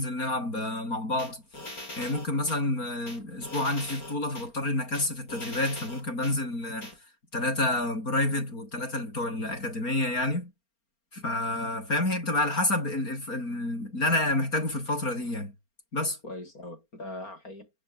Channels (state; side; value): late; right; 4.3 ms